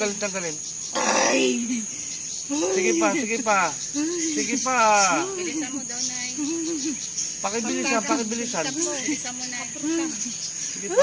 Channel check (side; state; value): both; identical; correlation 1.00